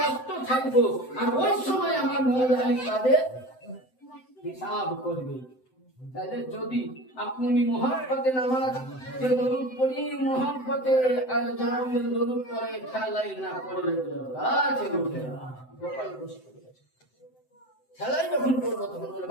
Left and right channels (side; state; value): right; late; 7.8 ms